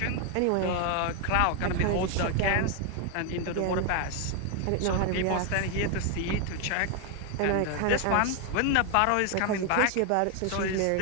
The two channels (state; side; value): different; both; correlation 0.00